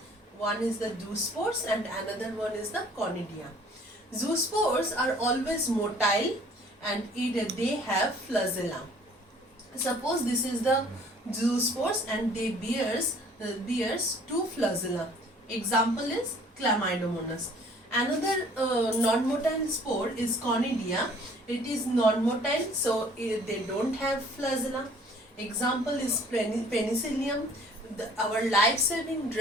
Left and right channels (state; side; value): normal; both; correlation 0.55